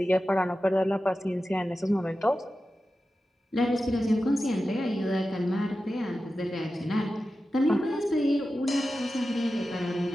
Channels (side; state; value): both; normal; correlation 0.93